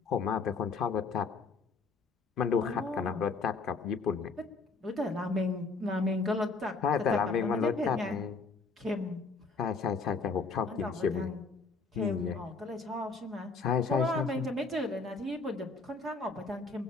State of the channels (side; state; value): right; quieter; 4.3 dB